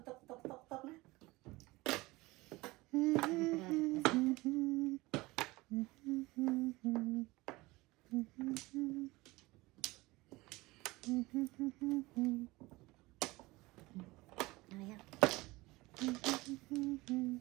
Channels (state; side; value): quieter; left; 21.2 dB